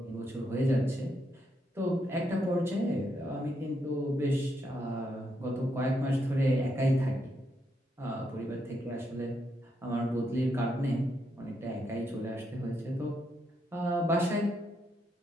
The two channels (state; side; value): normal; both; correlation 0.79